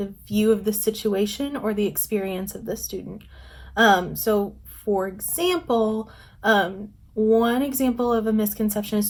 view of the situation or the experience of the student. For example, one example of a misconception a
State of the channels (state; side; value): identical; both; correlation 1.00